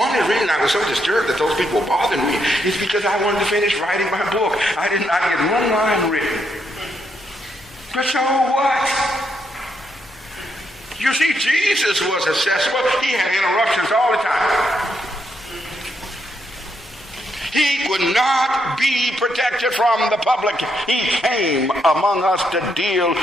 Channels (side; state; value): both; normal; correlation 0.78